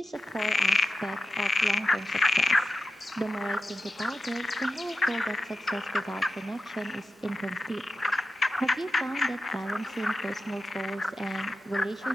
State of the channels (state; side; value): normal; both; correlation 0.91